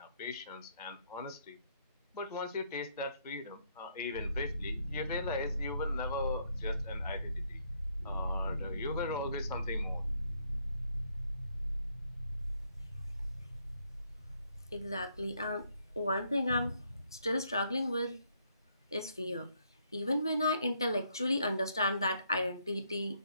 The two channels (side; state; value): both; inverted; correlation -0.72